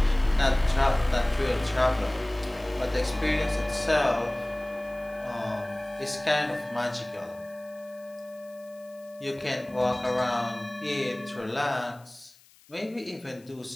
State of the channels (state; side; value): noise; left; hiss, 27 dB below the sound